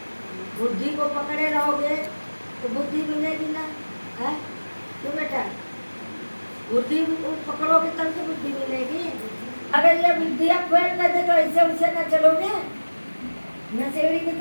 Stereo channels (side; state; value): both; inverted; correlation -1.00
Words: बुद्धि को पकड़े रहोगे तो बुद्धि मिलेगी ना? है क्यों बेटा? बुद्धि पकड़ोगे तब तो बुद्धि मिलेगी। अगर ये बुद्धियाँ फेल कर दे तो ऐसे उसे न चलोगे। नशेड़ी